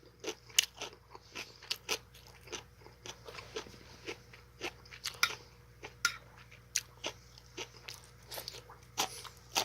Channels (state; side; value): identical; both; correlation 1.00